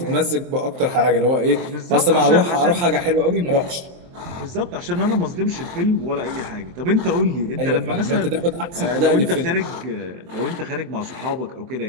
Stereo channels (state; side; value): late; left; 23 ms